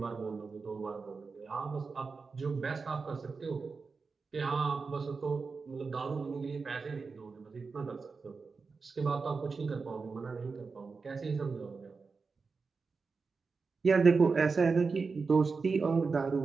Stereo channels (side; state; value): left; quieter; 4.7 dB